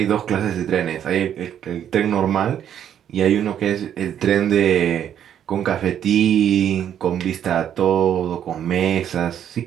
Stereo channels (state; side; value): quieter; left; 9.7 dB